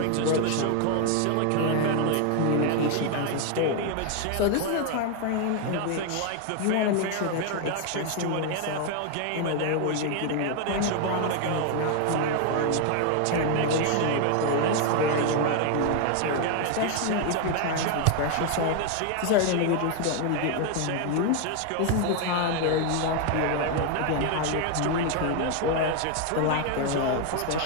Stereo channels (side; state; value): both; different; correlation 0.01